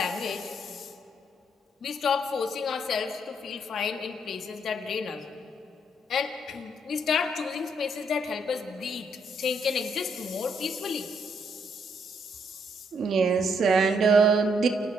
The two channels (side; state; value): both; normal; correlation 0.72